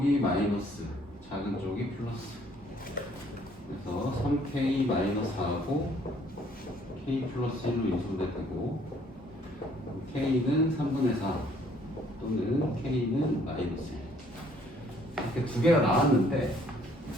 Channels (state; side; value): normal; both; correlation 0.62